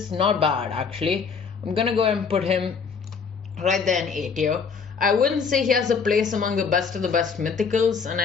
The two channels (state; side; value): quieter; right; 5.7 dB